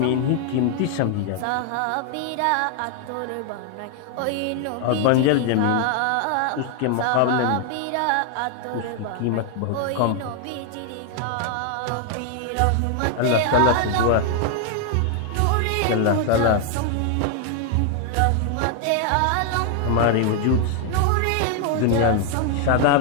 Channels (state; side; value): different; both; correlation 0.00